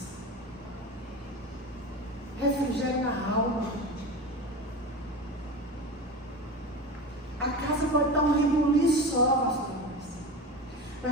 refrigério na alma. A casa pode estar um rebuliço só, pastor,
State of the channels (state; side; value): normal; both; correlation 0.28